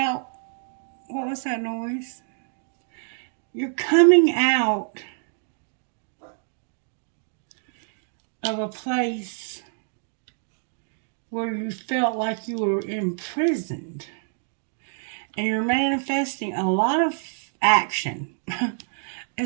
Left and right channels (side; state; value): left; silent; 56 dB below the other